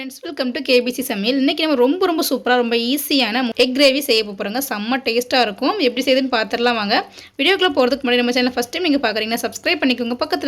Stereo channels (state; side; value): identical; both; correlation 1.00